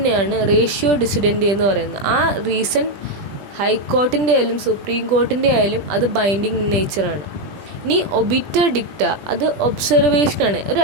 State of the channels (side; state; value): left; late; 20 ms